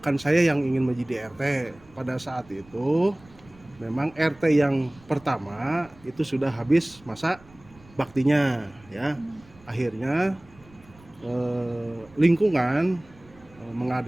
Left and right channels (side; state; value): right; noise; rumble, 25 dB below the sound